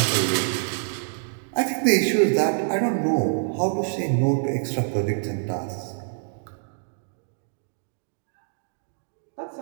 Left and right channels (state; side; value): silent; left; digital silence